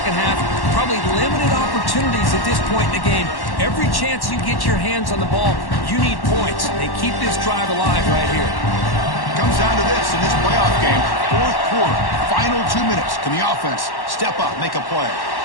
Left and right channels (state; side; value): late; right; 1.1 ms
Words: half. Probably limited opportunities at this point in the game. Every chance you get your hands on the ball, you need points. They keep this drive alive right here. Comes down to this in this playoff game. 4th quarter. Final 2 minutes. Can the offense step up, make a play?